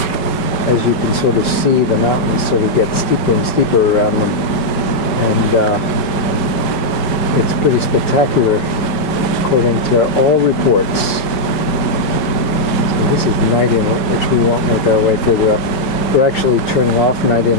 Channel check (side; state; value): right; late; 5.5 ms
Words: as you can sort of see, the mountains sort of get steeper and steeper around them. And it's pretty spectacular according to all reports. So this is Night Inlet, which we won't make our way further up. We're actually turning off Night